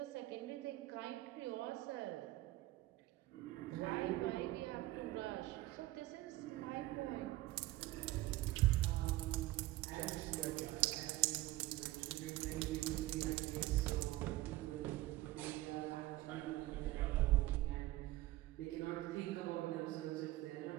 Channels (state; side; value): quieter; left; 17.5 dB